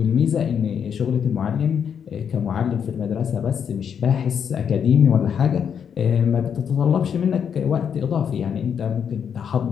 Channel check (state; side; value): quieter; right; 7.7 dB